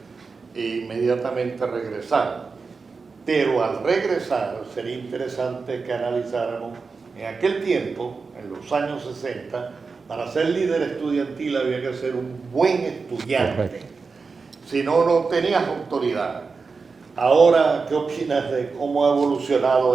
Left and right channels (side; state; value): left; quieter; 4.6 dB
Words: e inmediatamente regresar. Pero al regresar sería interesante que analizáramos en aquel tiempo, en los años 60, para ser líder estudiantil había que ser un buen estudiante. Correcto. Si no, no tenías autoridad. Ahora, ¿qué opinas de cómo ha evolucionado